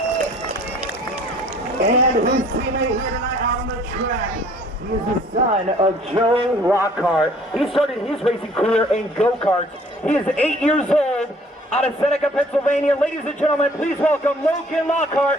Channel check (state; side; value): normal; both; correlation 0.55